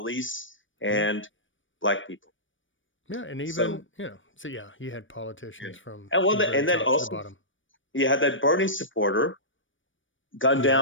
and black people. Yeah, and even you had politicians from and then the also bottom. You had that Bernie supporter gunned Yeah.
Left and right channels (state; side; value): late; right; 0.56 ms